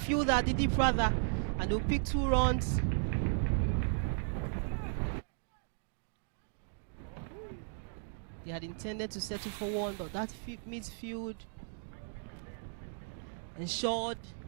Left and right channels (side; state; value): left; silent; digital silence